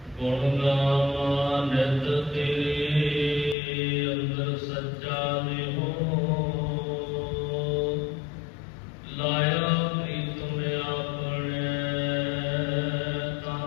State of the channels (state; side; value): drops out; right; at 3.6 s